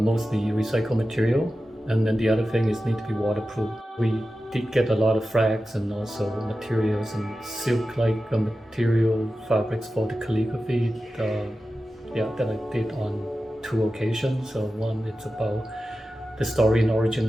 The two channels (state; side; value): normal; both; correlation 0.93